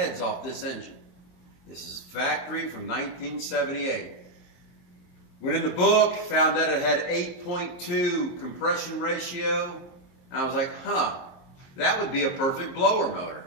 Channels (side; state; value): right; late; 23 ms